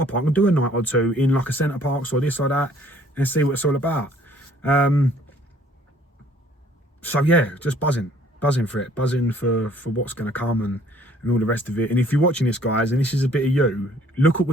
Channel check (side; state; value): both; normal; correlation 0.58